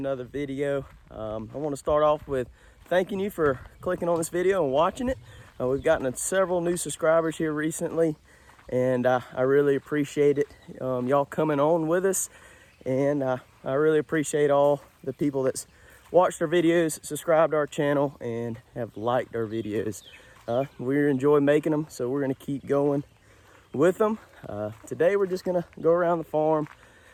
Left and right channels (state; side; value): identical; both; correlation 1.00